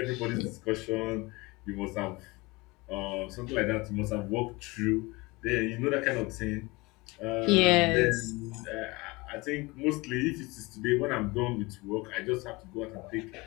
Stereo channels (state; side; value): quieter; right; 23.7 dB